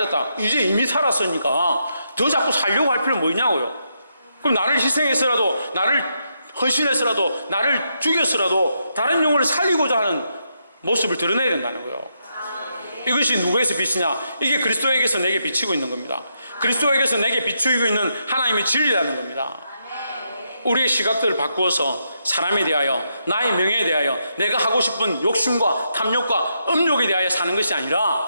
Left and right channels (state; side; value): inverted; both; correlation -0.80